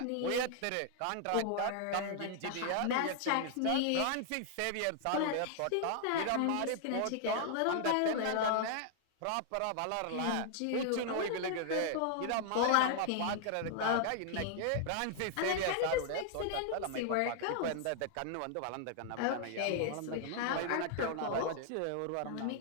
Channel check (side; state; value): both; different; correlation 0.00